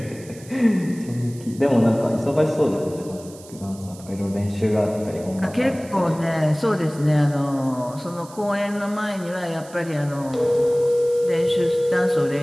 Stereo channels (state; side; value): noise; right; hiss, 20 dB below the sound